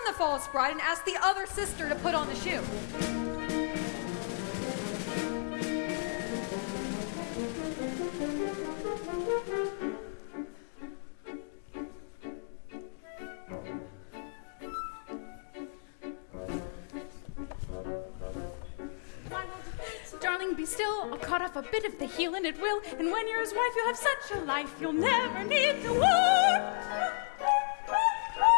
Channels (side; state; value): right; silent; digital silence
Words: the false bride and asked the other sister to put on the shoe. still, I'll cut off a bit of the heel and it will. And when you're his wife, you'll have such a life, you'll never need to work.